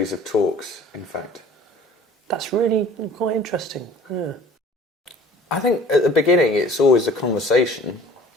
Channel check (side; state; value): both; normal; correlation 0.49